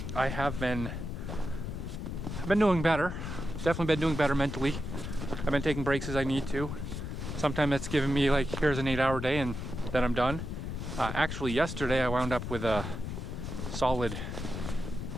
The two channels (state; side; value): noise; left; rumble, 5 dB below the sound